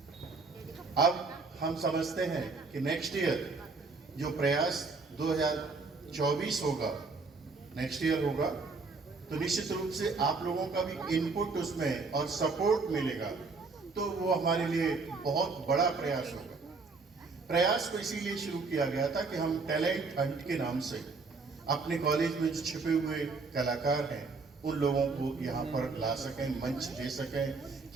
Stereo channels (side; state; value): left; quieter; 4.2 dB